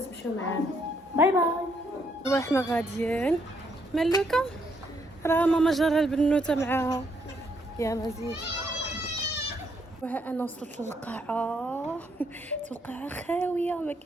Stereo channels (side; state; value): both; normal; correlation 0.73